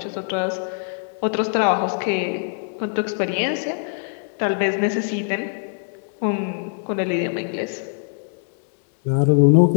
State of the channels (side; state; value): right; silent; digital silence